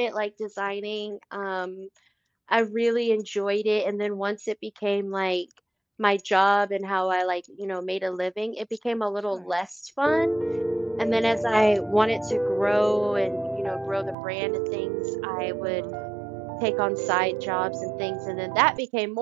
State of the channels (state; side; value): drops out; left; at 14.2 s